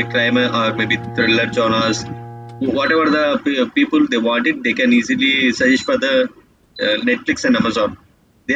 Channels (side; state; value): both; identical; correlation 1.00